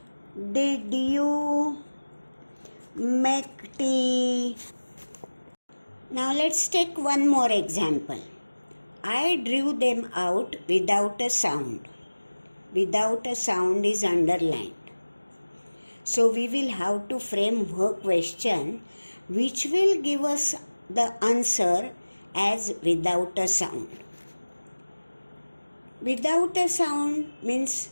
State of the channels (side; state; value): both; inverted; correlation -1.00